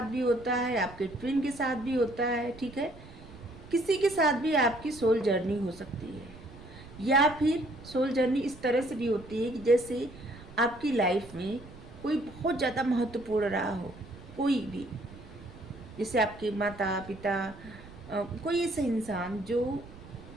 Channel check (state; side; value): noise; right; rumble, 18 dB below the sound